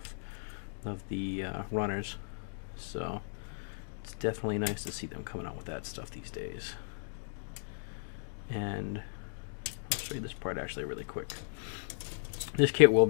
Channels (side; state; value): right; silent; digital silence